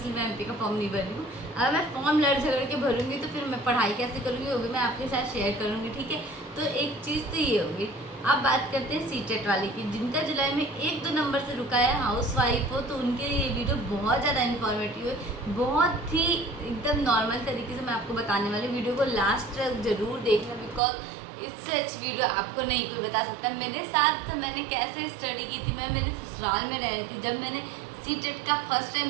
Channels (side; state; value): left; drops out; at 20.8 s